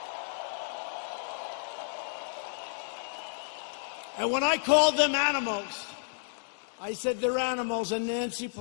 And when I called them animals, I said they're animals. And Nancy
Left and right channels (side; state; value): right; silent; 57 dB below the other